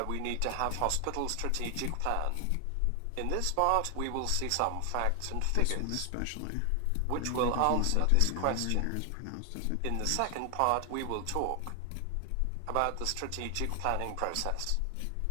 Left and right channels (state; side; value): different; both; correlation 0.00